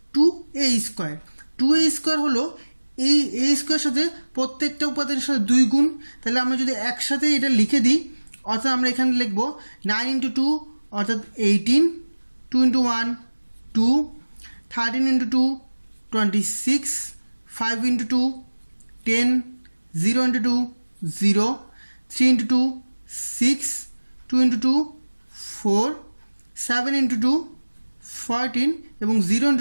2a square. 2a square হলো এই a স্কোয়ারের সাথে প্রত্যেকটা উপাদানের সাথে 2 গুণ, তাহলে আমরা যদি একসাথে এটা লিখে দিই অর্থাৎ আমরা এখানে লিখব 9 ইন্টু 2 অর্থাৎ 18 2 into 1 2 13 into 2 26 5 into 2 10 0 into 2 0 3 into 2 6 2 into 2 4 7 into 2 14 এবং 0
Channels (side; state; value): both; inverted; correlation -1.00